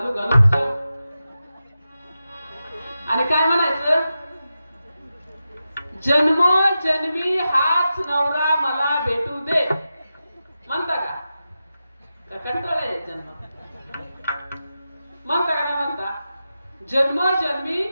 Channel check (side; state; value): both; inverted; correlation -0.91